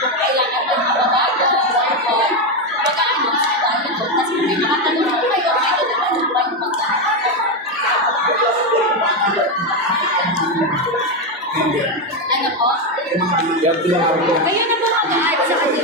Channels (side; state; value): both; normal; correlation 0.09